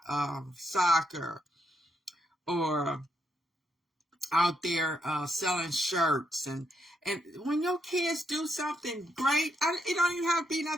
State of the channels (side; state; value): both; normal; correlation 0.78